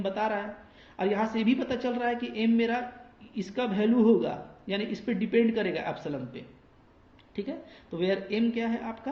बता रहा है, और यहाँ से भी पता चल रहा है कि m मेरा इसका वैल्यू होगा, यानी इस पर डिपेंड करेगा एप्सिलॉन पे। ठीक है, तो वेयर m क्या है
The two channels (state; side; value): identical; both; correlation 1.00